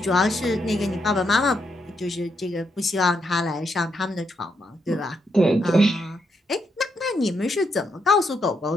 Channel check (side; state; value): both; normal; correlation 0.79